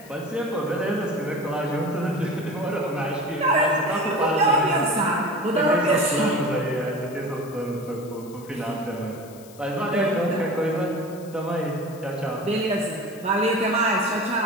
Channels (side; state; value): left; noise; hiss, 22 dB below the sound